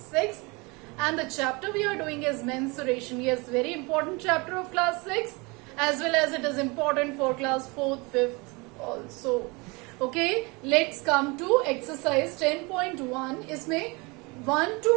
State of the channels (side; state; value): left; quieter; 27.1 dB